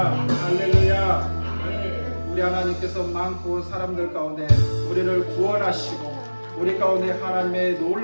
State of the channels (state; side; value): inverted; both; correlation -1.00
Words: 할렐루야. 우리 하나님께서 많고 사람들 가운데 우리를 구원하시고 우리 가운데 하나님의